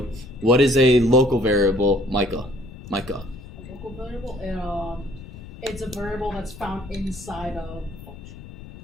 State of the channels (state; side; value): noise; left; rumble, 15 dB below the sound